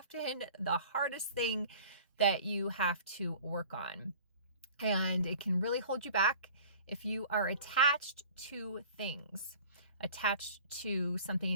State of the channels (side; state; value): both; inverted; correlation -0.45